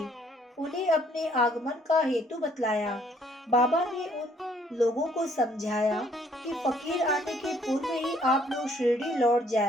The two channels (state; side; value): normal; both; correlation 0.63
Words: उन्हें अपने आगमन का हेतु बतलाया। बाबा ने उन लोगों को समझाया कि फकीर आने के पूर्व ही आप लोग शिरडी लौट